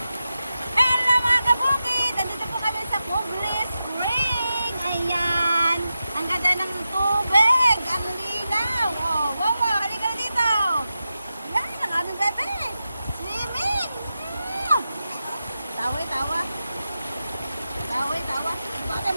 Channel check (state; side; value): inverted; both; correlation -0.91